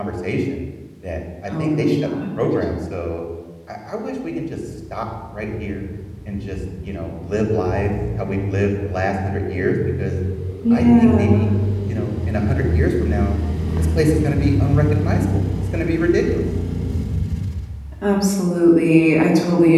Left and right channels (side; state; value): both; identical; correlation 1.00